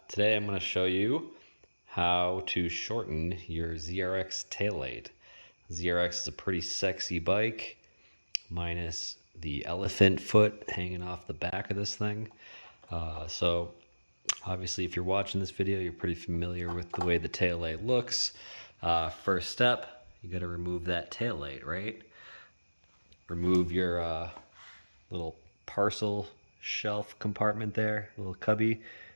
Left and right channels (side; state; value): both; inverted; correlation -1.00